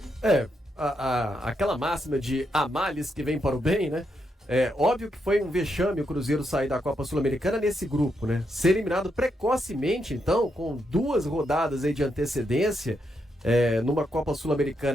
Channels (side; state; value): both; normal; correlation 0.81